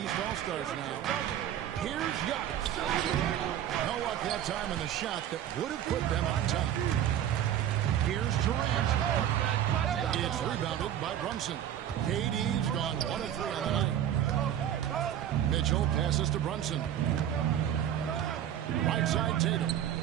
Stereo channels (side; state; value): left; quieter; 10.6 dB